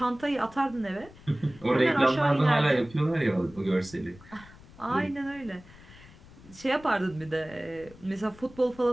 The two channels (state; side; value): noise; left; rumble, 21 dB below the sound